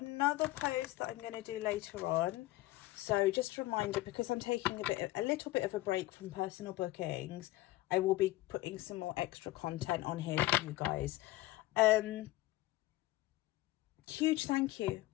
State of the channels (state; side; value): quieter; right; 17.7 dB